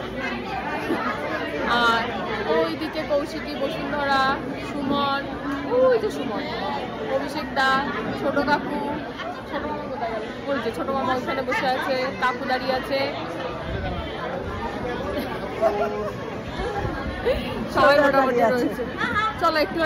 আর ওইদিকে কৌশিকী, বসুন্ধরা, সুমন, ওই যে সুমন, অভিষেক দা, ছোট কাকু, ছোট মামা কোথায় গেল? ওই যে ছোট মামা ওখানে বসে আছে, কাকু দাঁড়িয়ে আছে, সবাই মোটামুটি রয়েছে। চলো একটু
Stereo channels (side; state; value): both; identical; correlation 1.00